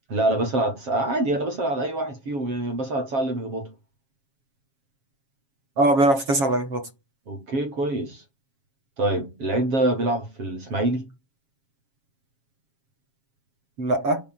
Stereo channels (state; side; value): late; left; 7.4 ms